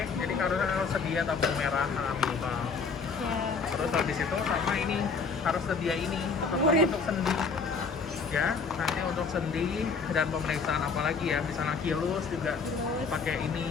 Jadi harus sedia tabung merah minimal. ya. Terus habis itu sama ini harus sedia ini untuk sendi. Ya, nanti untuk sendi dan pemeriksaan apa lagi ya, misalnya kilus juga Terus pakai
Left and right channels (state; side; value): quieter; right; 5.1 dB